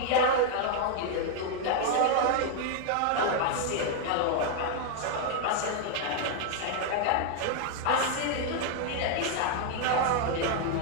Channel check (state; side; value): different; both; correlation 0.00